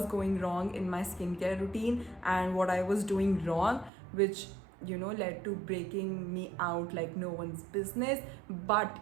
going wrong in my skincare routine and what I was doing wrong, which led to breaking me out like no one's business. But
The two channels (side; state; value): left; drops out; at 3.9 s